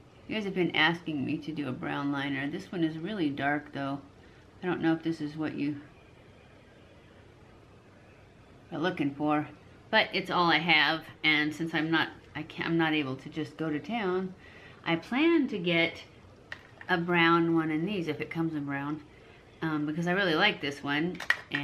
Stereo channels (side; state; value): both; identical; correlation 1.00